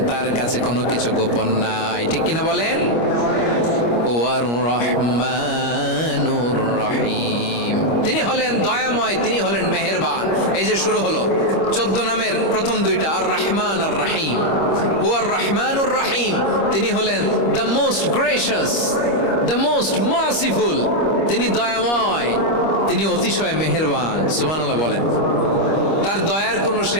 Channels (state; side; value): late; right; 25 ms